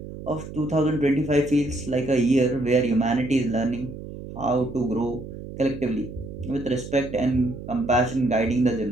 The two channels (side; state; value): right; noise; hum, 11 dB below the sound